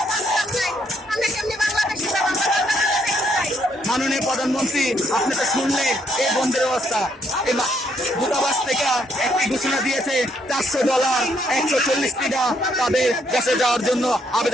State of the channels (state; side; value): normal; both; correlation 0.72